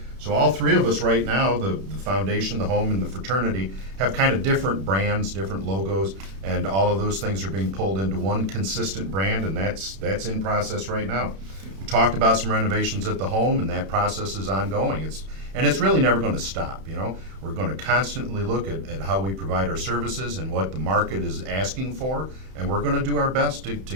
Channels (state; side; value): late; left; 31 ms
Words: So all three of us right now, the foundation, the home, and the fraternity, have kind of different brands, different logos, and all of those things are being pulled into one consistent brand, and that's in process right now. We talked about some renovations at the home, and that process is ongoing. It's really never going to stop. We're going to constantly look at how we provide our services and what the market is asking for, and we're going to do our best to